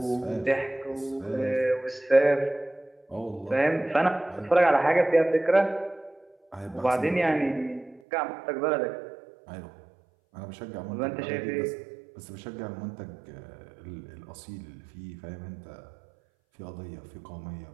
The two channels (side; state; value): left; drops out; at 8.0 s